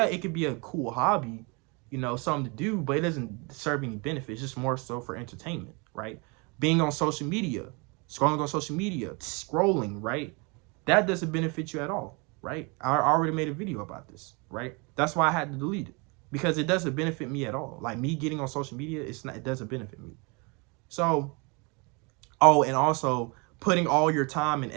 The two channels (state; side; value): quieter; left; 30.4 dB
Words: it could be a cool hobby, you know, something to do, but it doesn't serve any benefits. It's just more so for entertainment, right? Being on social media, scrolling on social media, scrolling, right? That doesn't benefit you at all, right? I already made a video about this, right? That's why I had to delete it, because it doesn't benefit me at all. Like me getting on social media, it doesn't benefit me. So, oh, and also putting all your time and